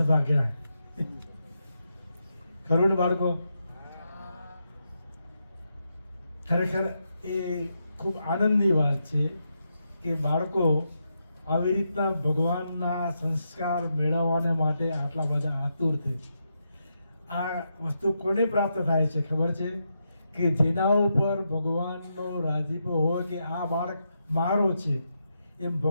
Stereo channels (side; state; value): both; inverted; correlation -0.84